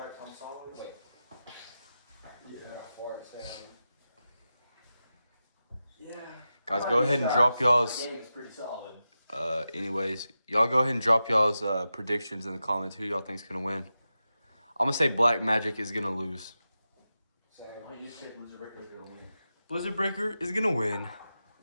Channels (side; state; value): both; inverted; correlation -0.91